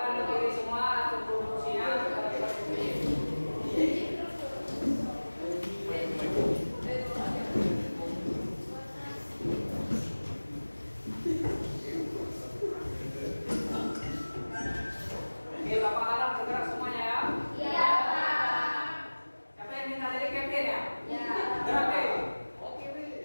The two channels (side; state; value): both; inverted; correlation -1.00